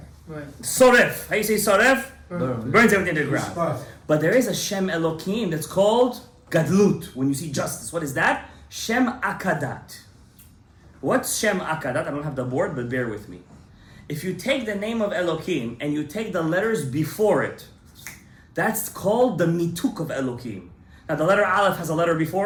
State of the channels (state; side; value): identical; both; correlation 1.00